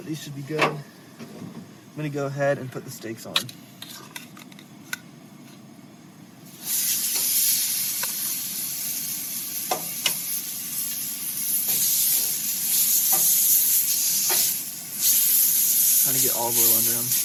these should be good. I'm gonna go ahead and put the steaks on. Trying to get olive oil under them.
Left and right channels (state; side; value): identical; both; correlation 1.00